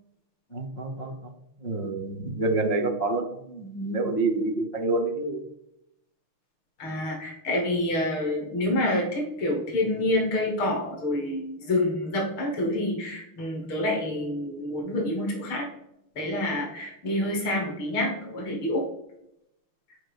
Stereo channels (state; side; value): late; right; 6.5 ms